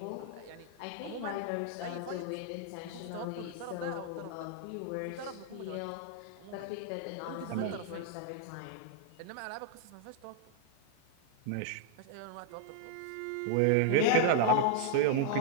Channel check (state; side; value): different; both; correlation 0.00